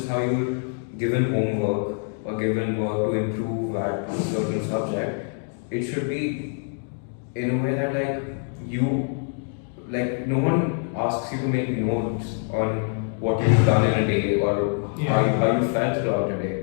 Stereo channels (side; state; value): right; silent; 59 dB below the other